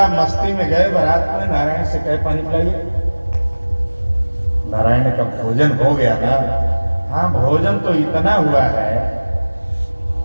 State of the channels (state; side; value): inverted; both; correlation -1.00